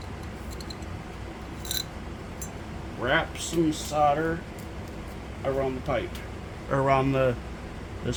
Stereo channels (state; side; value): identical; both; correlation 1.00